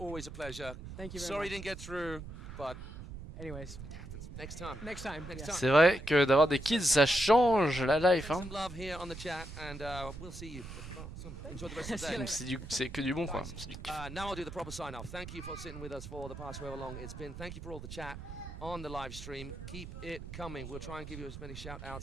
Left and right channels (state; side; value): noise; right; rumble, 11 dB below the sound